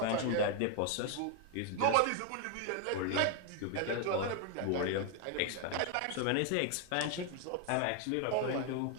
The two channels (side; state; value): both; different; correlation 0.00